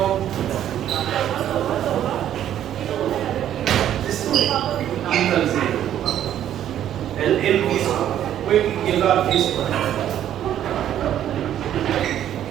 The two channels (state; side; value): quieter; left; 11.0 dB